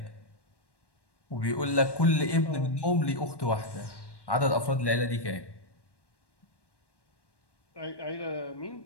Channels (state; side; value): late; right; 1.1 ms